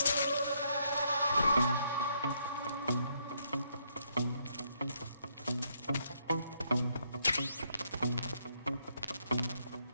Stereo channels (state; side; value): inverted; both; correlation -0.74